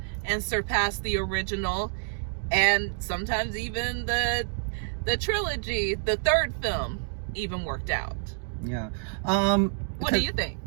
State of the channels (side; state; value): left; silent; digital silence